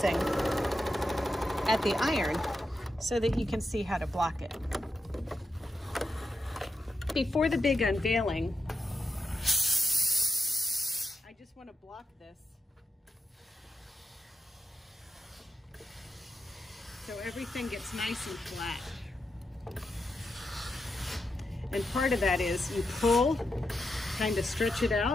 at the iron so that you can see how to block it. Before the big unveiling, I just want to block this so everything gets nice and flat. And part of that is you pull, kind of stretch it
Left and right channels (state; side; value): normal; both; correlation 0.87